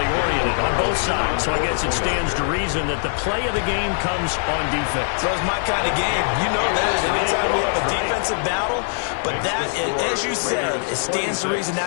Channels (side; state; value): right; silent; digital silence